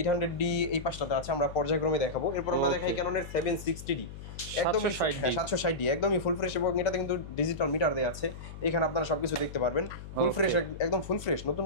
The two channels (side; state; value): left; noise; hum, 12 dB below the sound